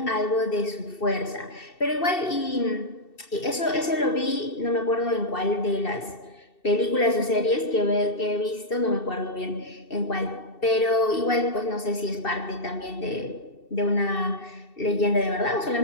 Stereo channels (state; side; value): late; right; 2.7 ms